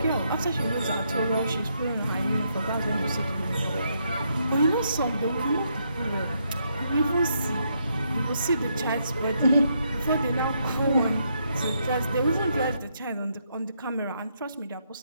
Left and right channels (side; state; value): both; inverted; correlation -0.77